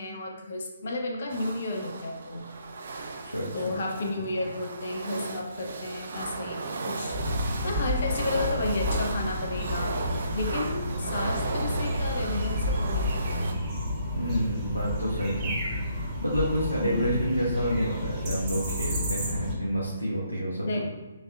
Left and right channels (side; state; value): both; inverted; correlation -0.69